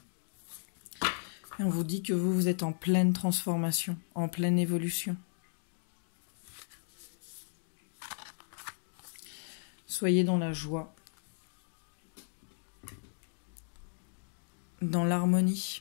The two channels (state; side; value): silent; right; digital silence